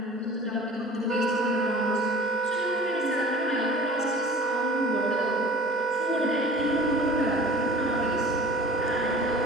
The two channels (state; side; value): normal; both; correlation 0.44